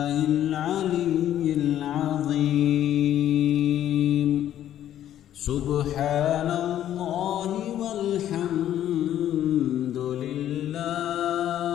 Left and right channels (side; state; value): right; quieter; 11.5 dB